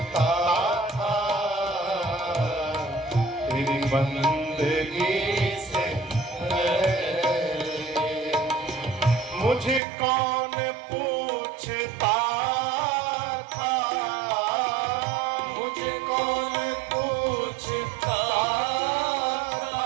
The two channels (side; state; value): left; drops out; at 9.8 s